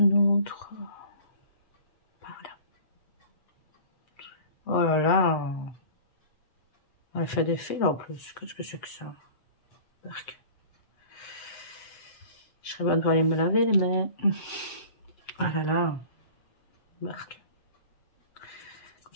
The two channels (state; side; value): late; right; 7.8 ms